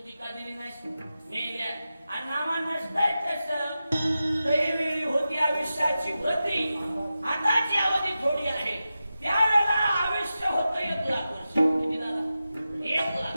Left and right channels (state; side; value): inverted; both; correlation -0.92